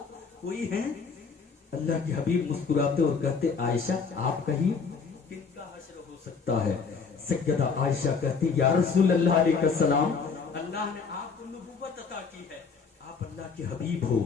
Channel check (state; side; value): quieter; right; 5.3 dB